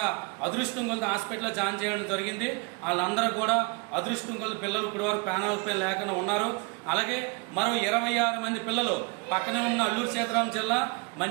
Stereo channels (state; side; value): quieter; left; 30.4 dB